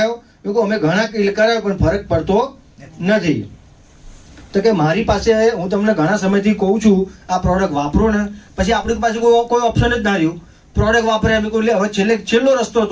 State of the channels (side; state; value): both; identical; correlation 1.00